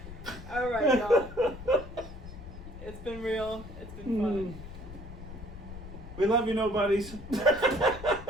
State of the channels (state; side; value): noise; left; rumble, 13 dB below the sound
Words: All right, y'all. It's been real. It's been fun. We love you, nobodies.